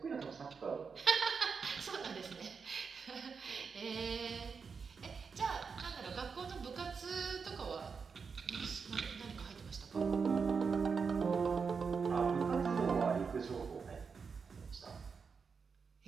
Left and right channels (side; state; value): left; quieter; 5.5 dB